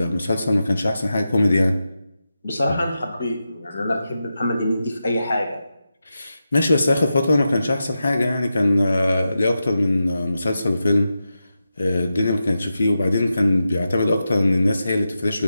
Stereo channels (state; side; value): inverted; both; correlation -0.90